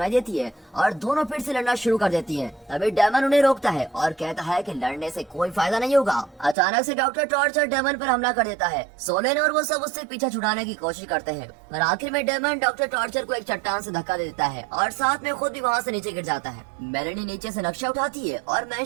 देती है और दोनों फिर से लड़ना शुरू कर देती हैं। तभी डेमन उन्हें रोकता है और कहता है कि लड़ने से कोई फायदा नहीं होगा। अचानक से डॉक्टर टॉर्चर डेमन पर हमला कर देता है। सोलेन और वो सब उससे पीछा छुड़ाने की कोशिश करते हैं, पर आखिर में डेमन डॉक्टर टॉर्चर को एक चट्टान से धक्का दे देता है और साथ में खुद भी वहाँ से नीचे गिर जाता है। मेलेनी नीचे से नक्शा उठाती है और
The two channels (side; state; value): left; drops out; at 6.6 s